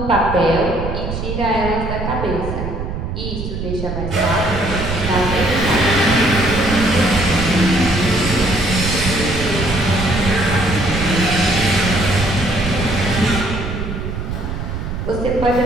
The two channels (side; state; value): right; noise; rumble, 5 dB below the sound